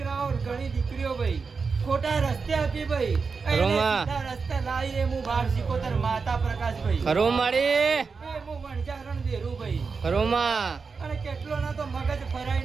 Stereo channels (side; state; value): left; quieter; 5.0 dB